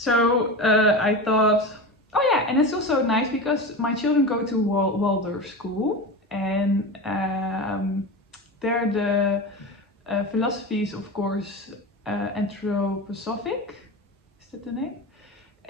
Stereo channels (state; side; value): normal; both; correlation 0.25